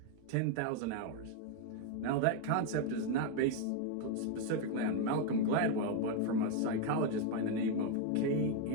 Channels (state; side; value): different; both; correlation 0.01